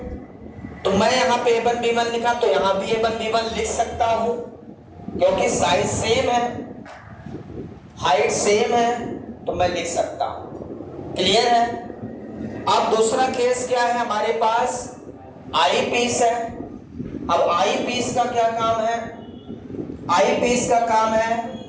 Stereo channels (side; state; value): both; identical; correlation 1.00